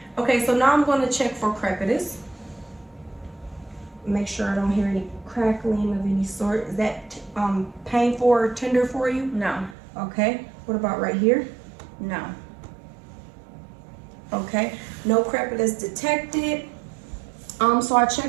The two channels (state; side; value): drops out; left; at 9.8 s